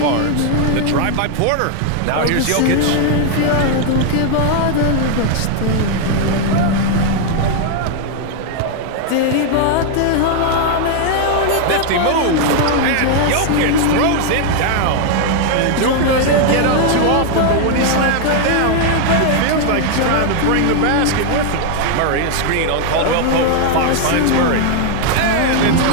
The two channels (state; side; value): different; both; correlation 0.00